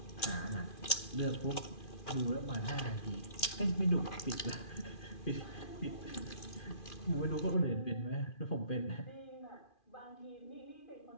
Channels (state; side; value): late; right; 2.4 ms